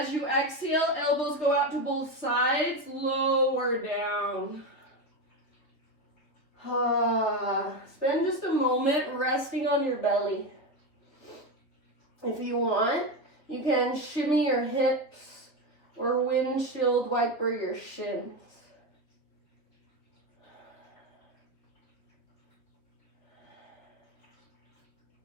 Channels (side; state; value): right; late; 3.2 ms